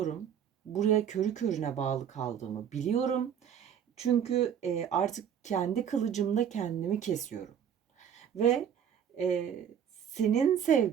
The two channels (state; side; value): quieter; left; 8.5 dB